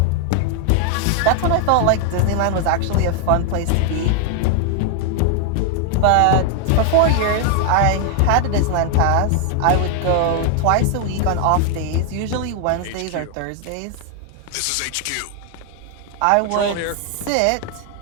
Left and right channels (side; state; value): both; different; correlation 0.00